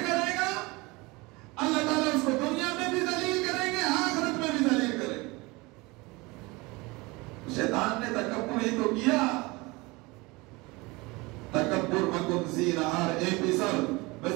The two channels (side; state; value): left; quieter; 24.1 dB